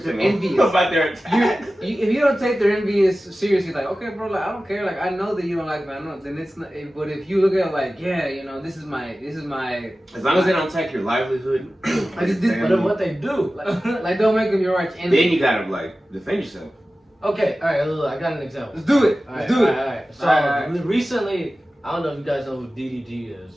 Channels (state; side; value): normal; both; correlation 0.95